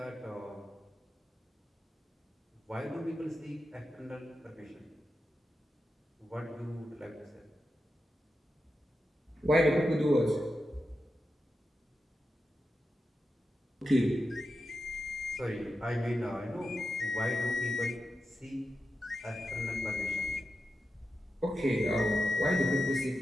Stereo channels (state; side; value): normal; both; correlation 0.90